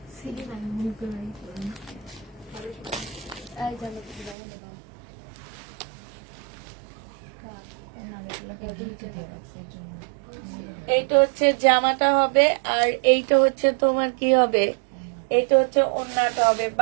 এইটা হচ্ছে জামাটা হবে, আর এইটা হচ্ছে তোমার কি হবে, এইটা হচ্ছে ওড়নাটা হবে।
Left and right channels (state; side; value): drops out; left; at 4.4 s